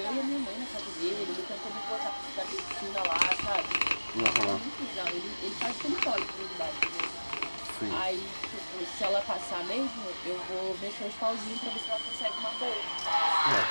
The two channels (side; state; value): both; inverted; correlation -1.00